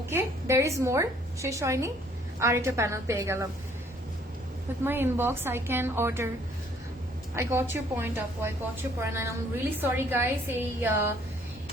দেয়ার ইজ মোর, শেষ হয়নি, আর একটা প্যানেল পেয়ে গেলাম। With my inbox I can order. I got your point up, I got your point, and I'm really sorry guys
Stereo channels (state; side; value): normal; both; correlation 0.62